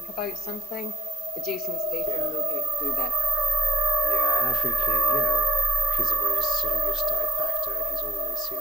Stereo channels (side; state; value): left; noise; hiss, 25 dB below the sound